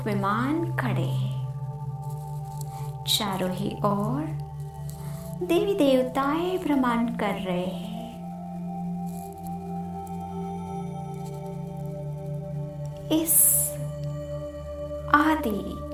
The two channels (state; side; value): identical; both; correlation 1.00